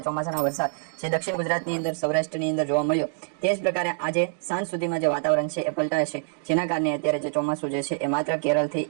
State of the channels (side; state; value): left; silent; digital silence